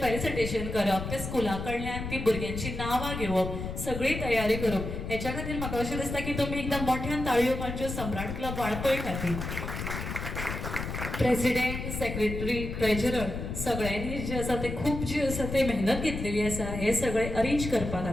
करप, ते स्कुला कडल्यान ती भुरग्यांची नांवां घेवप, सगळी तयारी करप. हेच्या खातीर म्हाका अशें दिसता की तुमी एकदम मोठ्यान ताळयो मारच्यो सम्राट क्लब वाळपय खातीर. प्रेसिडेंट, सेक्रेटरी, ट्रेजरर सगळ्यांनी जे आसा ते खूप जी आसा ते मेहनत घेतलेली आसा हे सगळे अरेंज करपा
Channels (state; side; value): noise; left; rumble, 6 dB below the sound